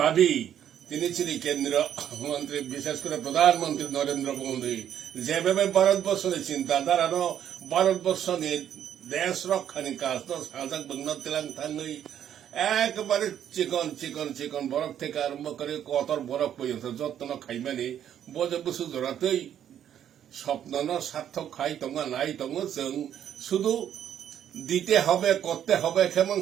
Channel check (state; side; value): quieter; left; 10.0 dB